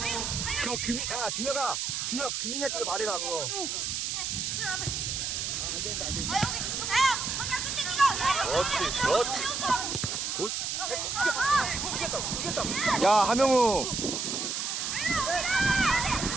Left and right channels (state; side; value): noise; right; hiss, 2 dB below the sound